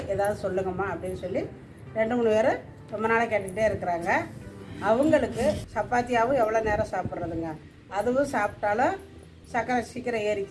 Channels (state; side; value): identical; both; correlation 1.00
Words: ஏதாவது சொல்லுங்கம்மா அப்படின்னு சொல்லி 2-3 பேர் ரொம்ப நாளாக கேட்டுக்கிட்டே இருக்கிறாங்க. அவங்களுக்கு சப்பாத்தியாகவும் எவ்வளோ நேரம் சாப்பிட்றதுங்க, அதுவும் சாப்பிட்டாலும் சக்கரை சீக்கிரம்